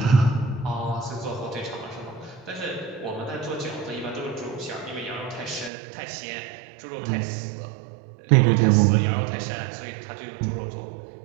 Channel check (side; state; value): left; drops out; at 5.7 s